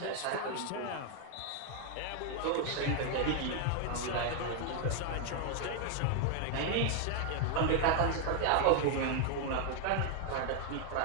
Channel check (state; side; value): different; both; correlation 0.00